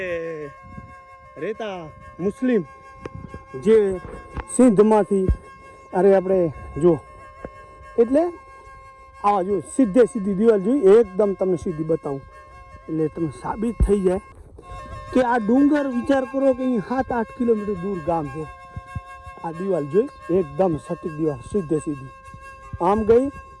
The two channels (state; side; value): identical; both; correlation 1.00